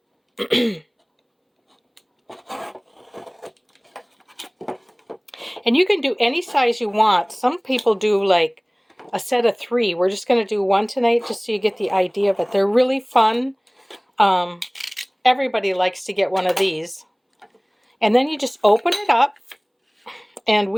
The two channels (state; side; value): identical; both; correlation 1.00